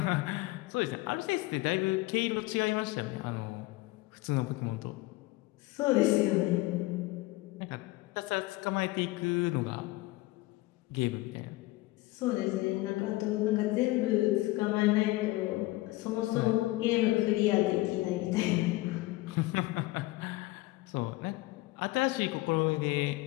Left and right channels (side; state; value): right; quieter; 19.6 dB